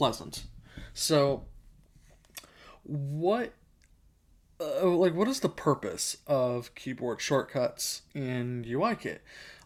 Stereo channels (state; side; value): identical; both; correlation 1.00